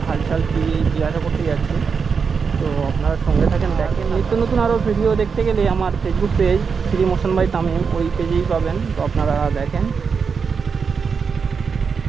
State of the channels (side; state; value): left; quieter; 5.7 dB